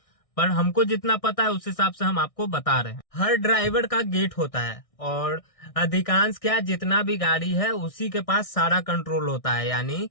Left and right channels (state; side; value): late; right; 1.6 ms